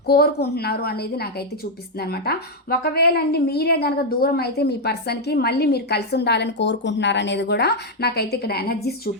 కోరుకుంటున్నారు అనేది నాకైతే చూపిస్తుంది అనమాట. ఒకవేళ అండి మీరే కనుక దూరం అయితే మీ పర్సన్కి మళ్ళీ మీరు కలిసి ఉండాలని కోరుకుంటున్నారు అనేది కూడా నాకైతే ఇక్కడ ఎనర్జీస్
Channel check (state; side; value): normal; both; correlation 0.00